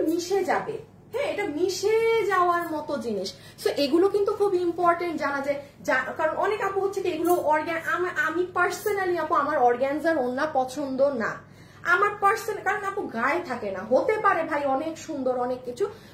মিশে যাবে। হ্যাঁ, এটা মিশে যাওয়ার মতো জিনিস। সো এগুলো কিন্তু খুব ইম্পর্টেন্ট জানা যায়, কারণ অনেক আপু হচ্ছে কি এগুলো আমি পার্সোনালি আপু আমার অর্গানজার ওড়না পছন্দ না, আমার পার্সোনাল, কারণ আপু গায়ে থাকে না। হতে পারে ভাই অনেক সুন্দর অনেক কিছু,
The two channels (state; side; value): identical; both; correlation 1.00